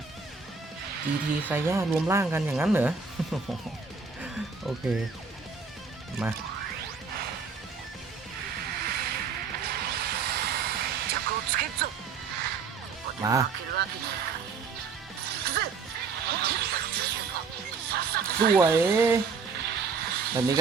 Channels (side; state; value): left; quieter; 5.2 dB